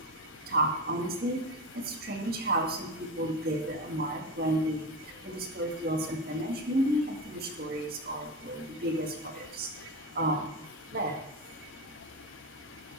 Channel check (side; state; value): both; normal; correlation 0.22